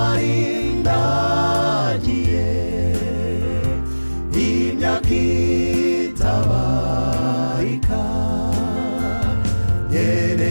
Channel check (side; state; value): both; inverted; correlation -1.00